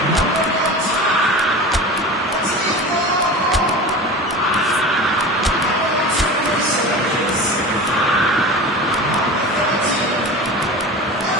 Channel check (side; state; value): both; normal; correlation 0.32